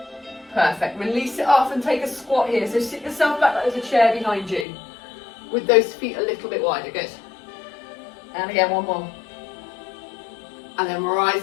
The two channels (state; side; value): drops out; right; at 4.7 s